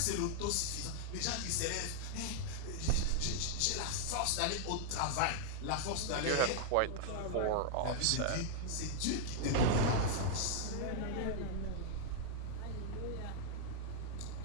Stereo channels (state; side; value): different; both; correlation -0.01